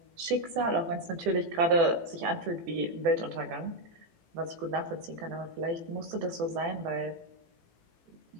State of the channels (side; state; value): left; late; 18 ms